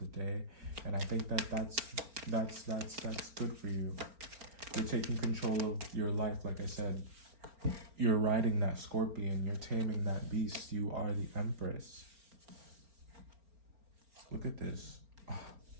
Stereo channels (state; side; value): late; left; 4.4 ms